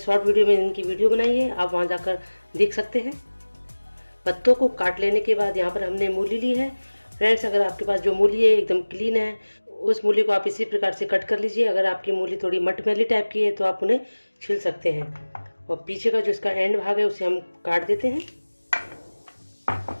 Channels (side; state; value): both; inverted; correlation -1.00